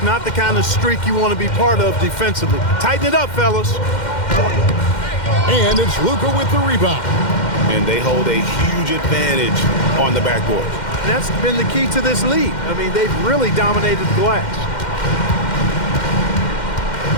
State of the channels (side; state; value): right; late; 2.1 ms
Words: not the kind of streak you want to be part of defensively. Tighten it up, fellas. And it's Luka with the rebound. And they hold a huge advantage on the backboard. That's been the key to this league. I mean, they've really dominated the glass.